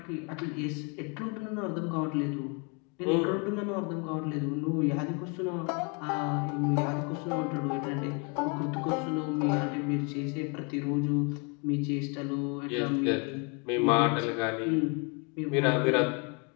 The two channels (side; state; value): right; quieter; 32.9 dB